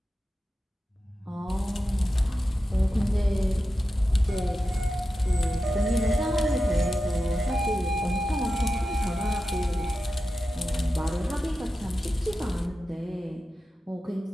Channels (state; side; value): normal; both; correlation 0.91